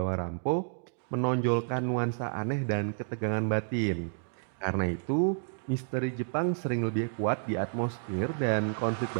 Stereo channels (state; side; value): silent; left; digital silence